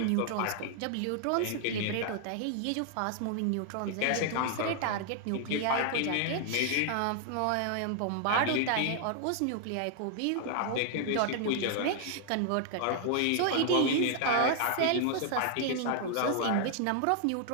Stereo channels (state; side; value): different; both; correlation 0.00